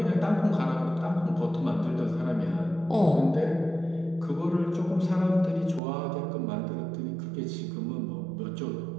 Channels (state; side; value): drops out; left; at 5.8 s